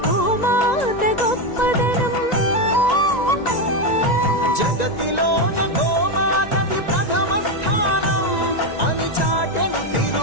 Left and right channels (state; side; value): late; right; 1.9 ms